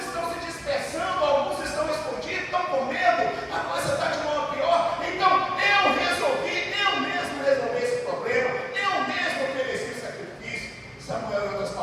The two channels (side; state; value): both; identical; correlation 1.00